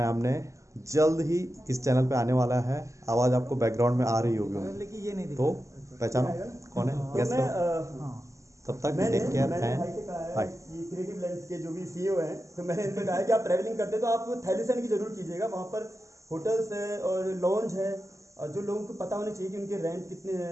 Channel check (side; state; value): left; late; 0.15 ms